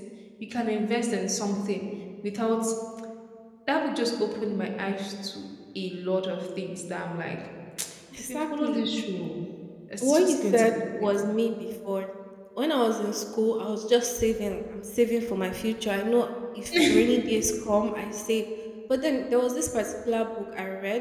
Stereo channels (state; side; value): identical; both; correlation 1.00